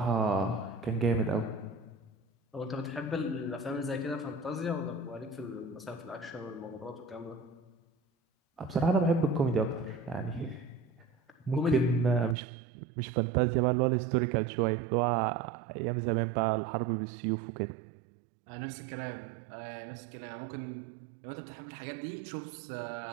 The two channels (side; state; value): left; drops out; at 12.4 s